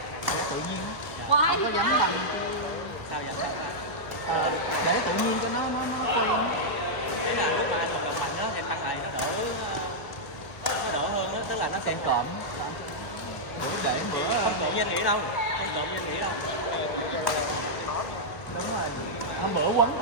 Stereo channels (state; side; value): late; right; 1.2 ms